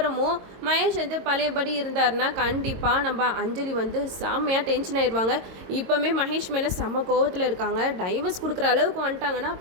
மகேஷ் வந்து பழையபடி இருந்தாருன்னா கண்டிப்பாக நம்ம அஞ்சலி வந்து செம்மையாக டென்ஷன் ஆயிடுவாங்க. இப்போவுமே மகேஷ் மேலே செம்ம கோவத்தில் இருக்காங்க. டைவர்ஸ் கொடுக்குற அளவுக்கு வந்துட்டாங்கன்னா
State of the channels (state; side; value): late; left; 22 ms